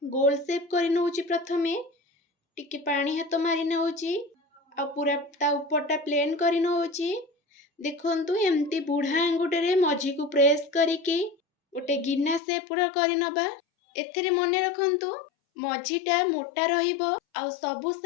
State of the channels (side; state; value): right; drops out; at 12.4 s